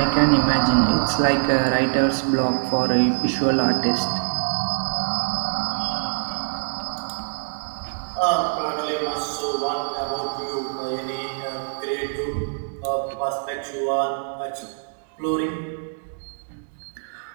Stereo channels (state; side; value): silent; left; digital silence